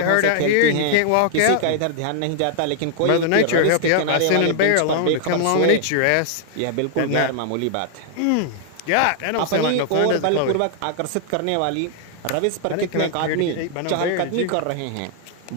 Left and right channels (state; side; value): different; both; correlation 0.00